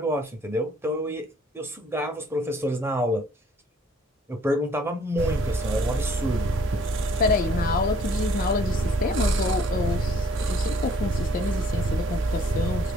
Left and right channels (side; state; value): both; normal; correlation 0.60